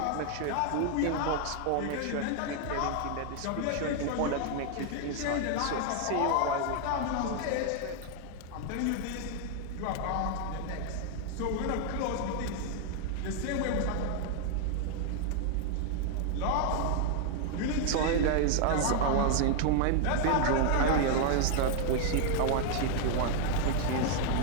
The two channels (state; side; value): different; both; correlation 0.00